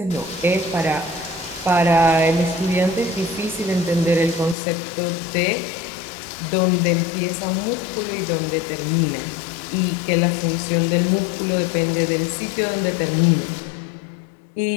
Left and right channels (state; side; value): drops out; right; at 4.5 s